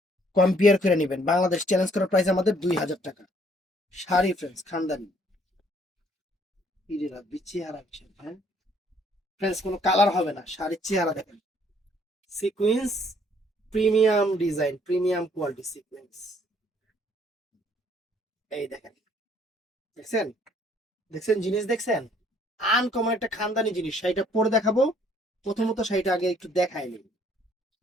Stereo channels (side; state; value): both; normal; correlation 0.63